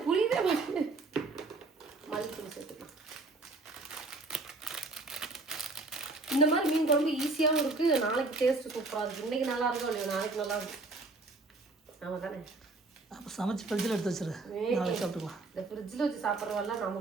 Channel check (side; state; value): left; quieter; 3.3 dB